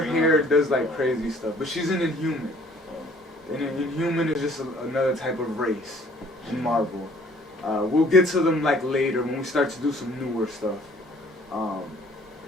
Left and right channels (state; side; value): normal; both; correlation 0.57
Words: hair does like crazy stuff. But she's an Inhuman. And an Inhuman is just another type of race in Marvel. We'll get to them like later when we start to do some newer stuff.